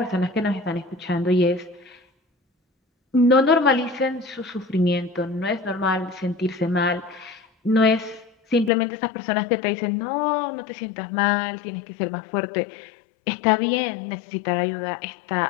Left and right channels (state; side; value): drops out; right; at 8.7 s